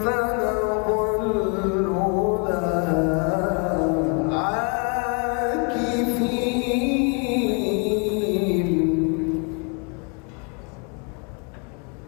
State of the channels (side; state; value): right; quieter; 35.1 dB